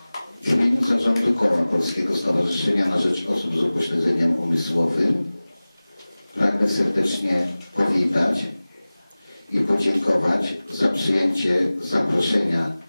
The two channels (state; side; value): inverted; both; correlation -0.98